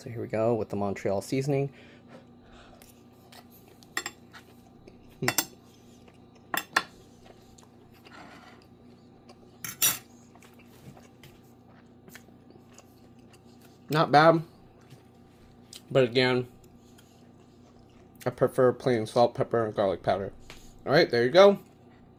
here we go with the Montreal seasoning. Not bad, but again, I prefer plain salt, pepper, and garlic powder. Alright, there you go.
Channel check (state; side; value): identical; both; correlation 1.00